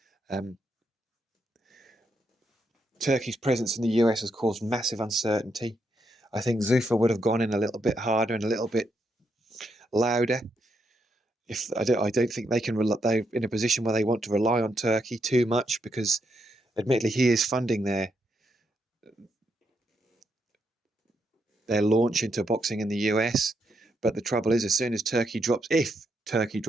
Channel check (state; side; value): normal; both; correlation 0.79